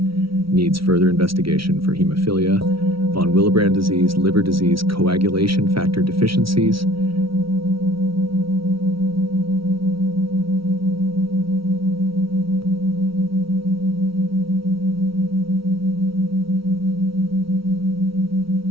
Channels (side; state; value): left; late; 0.75 ms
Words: needs further investigation for hemophilia, von Willebrand disease, liver disease, coagulation factor deficiencies.